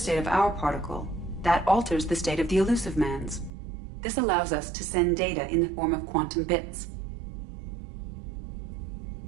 of our particle, that alters the state of the elusive man's. This allows us to send data in the form of quantum bits.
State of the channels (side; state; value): left; drops out; at 3.5 s